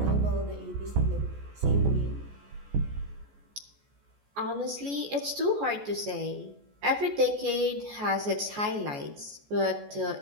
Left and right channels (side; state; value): left; late; 14 ms